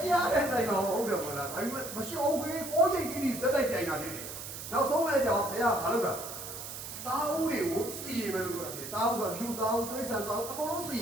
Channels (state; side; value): noise; right; hiss, 9 dB below the sound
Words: ရားနဲ့နိုင်တော့ဟုတ်တယ်ပေါ့လားဒါပေမဲ့မရှိအောင်ပဲကိုချိန်ကြီးစက်တိုက်ပြိုင်တာနေတယ်နောက်ဆုံးလည်းကြောင်ဘုရားဘာလုပ်တာတားဦးတွေကိုစီရင်မယ်လို့ပြောတာဖြစ်တားဦးဆိုလူတားဦးတိရစ္ဆာန်တားဦးအကုန်လုံးစီရ